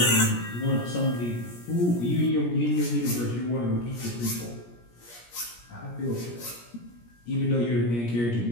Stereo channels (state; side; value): late; right; 17 ms